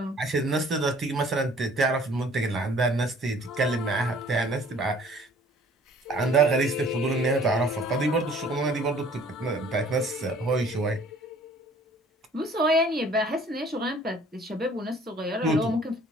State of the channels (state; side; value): normal; both; correlation 0.54